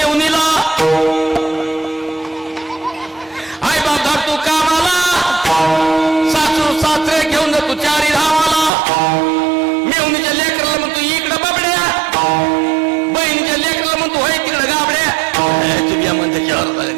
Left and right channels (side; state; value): left; drops out; at 8.7 s